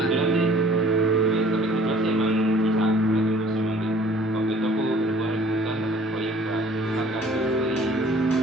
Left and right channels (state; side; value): normal; both; correlation 0.53